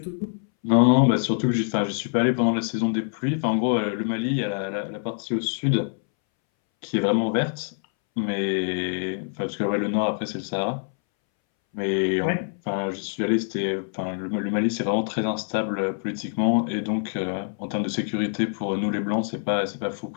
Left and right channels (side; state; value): right; silent; 62 dB below the other